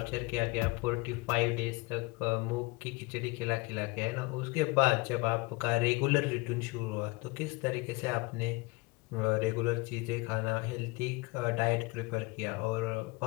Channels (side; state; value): right; quieter; 24.5 dB